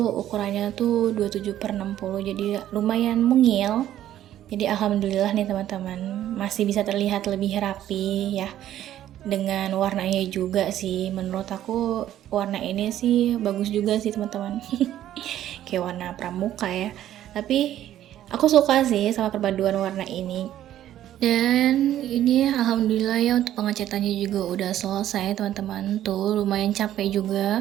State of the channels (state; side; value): quieter; left; 12.2 dB